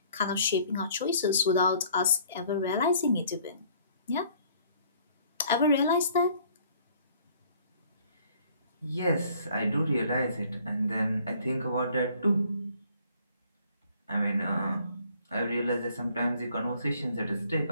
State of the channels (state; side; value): inverted; both; correlation -0.58